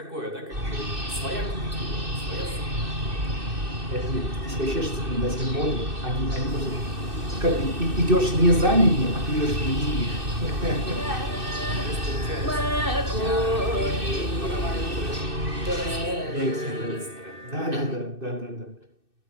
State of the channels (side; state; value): left; late; 2.6 ms